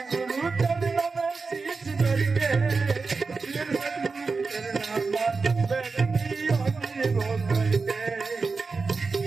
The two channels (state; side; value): quieter; left; 4.4 dB